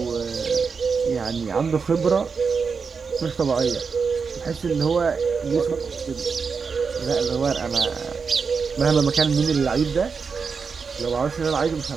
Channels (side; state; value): left; quieter; 5.4 dB